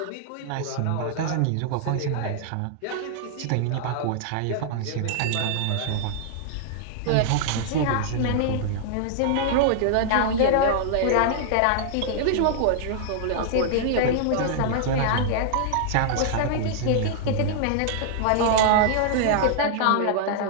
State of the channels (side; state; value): both; different; correlation -0.01